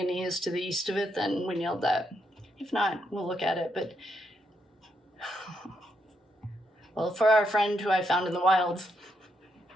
is to the east of it, then we nailed that. If not, we'll look at it. But, well, for our friend who I found in the wild,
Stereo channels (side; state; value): both; normal; correlation 0.79